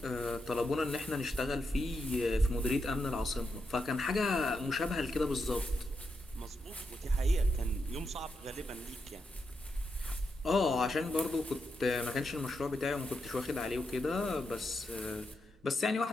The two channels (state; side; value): normal; both; correlation 0.84